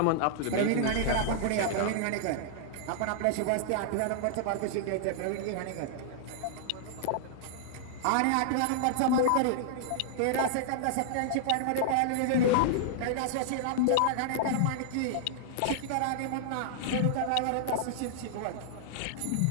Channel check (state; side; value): different; both; correlation -0.01